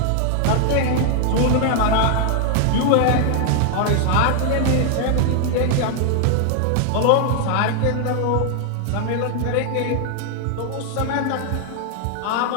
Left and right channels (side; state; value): both; different; correlation 0.00